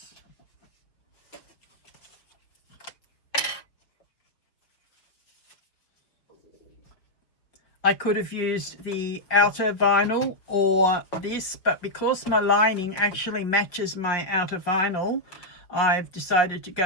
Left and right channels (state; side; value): late; right; 5.4 ms